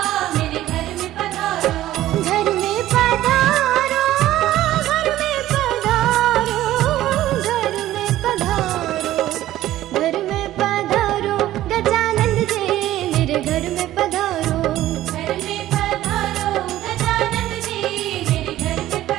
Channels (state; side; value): quieter; left; 14.3 dB